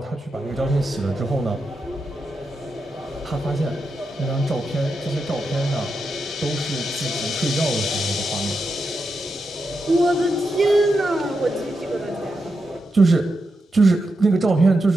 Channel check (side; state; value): both; normal; correlation 0.86